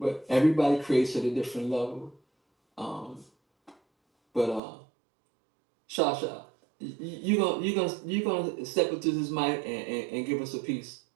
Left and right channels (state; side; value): drops out; left; at 4.6 s